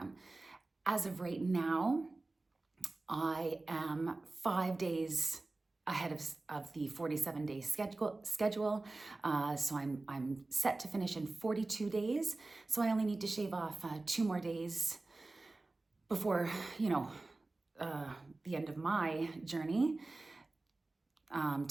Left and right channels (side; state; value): left; quieter; 3.2 dB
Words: As of right now, I am 5 days ahead of the 47-day schedule. So I'm set to finish in 42 days. So I only need to shave off 2 more days before, the end of my journey,